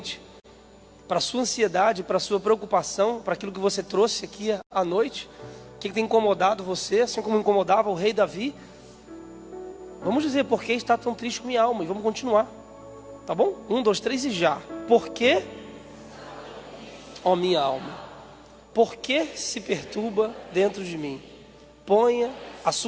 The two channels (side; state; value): both; identical; correlation 1.00